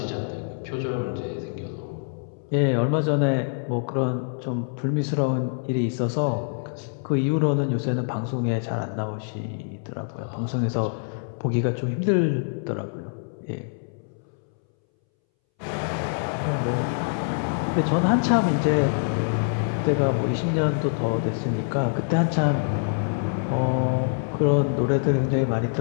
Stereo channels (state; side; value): silent; right; 62 dB below the other